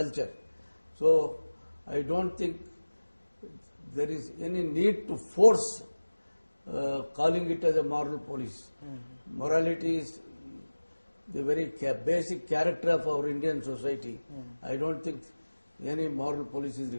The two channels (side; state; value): both; inverted; correlation -1.00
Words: So I don't think there is any need to force calling it as a moral police. Morality is the very basic character of our Indian society. I don't think any moral police is